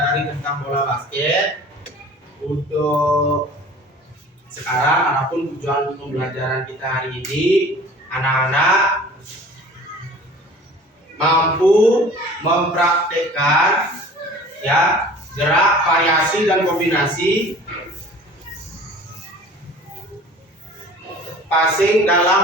tentang bola basket. Untuk sekarang, adapun tujuan pembelajaran kita hari ini, anak-anak mampu mempraktekkan ya gerak, variasi dan kombinasi passing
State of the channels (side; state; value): both; normal; correlation 0.45